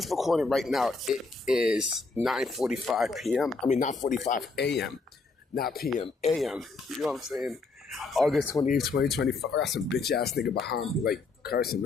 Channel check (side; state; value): right; quieter; 3.9 dB